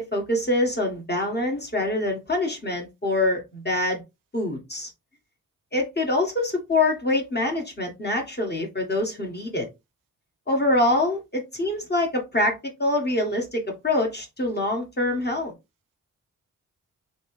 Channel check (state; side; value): normal; both; correlation 0.07